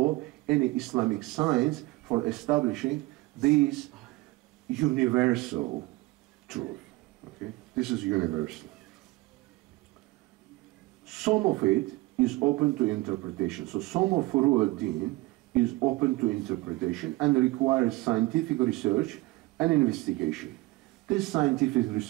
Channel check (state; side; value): quieter; left; 21.0 dB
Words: any Islamic science for establishing these universal truth. Okay? This is universal. Some of it is open to interpretation. So some of furu al-din is open to interpretation and requires scientific research and investigation. This scientific